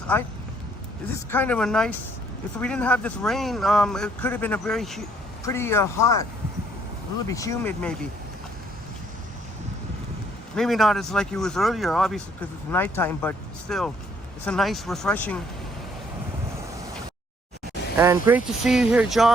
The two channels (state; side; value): normal; both; correlation 0.65